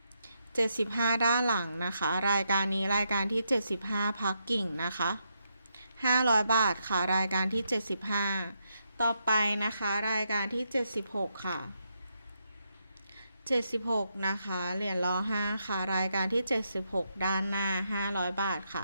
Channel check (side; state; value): both; inverted; correlation -0.81